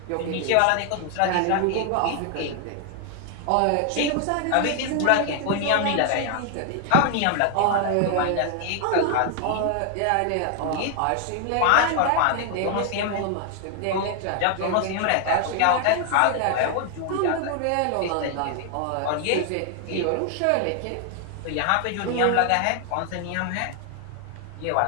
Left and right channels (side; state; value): both; different; correlation 0.00